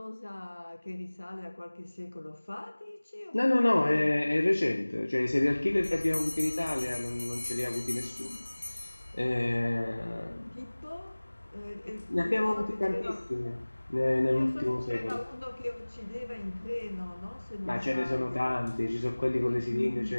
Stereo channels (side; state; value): both; inverted; correlation -1.00